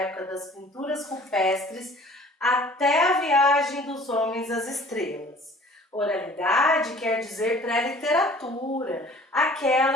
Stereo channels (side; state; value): both; normal; correlation 0.50